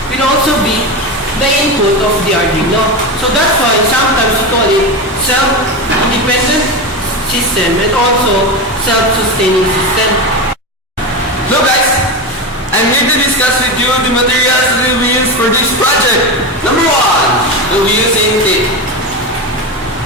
will also be the input of the Arduino. So that's why sometimes we call it self-independent system and also self-sustaining system. Hello guys, I'm here to discuss with you the materials that will be used for this project. Number 1, we'll be using tape.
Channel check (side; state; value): both; normal; correlation 0.19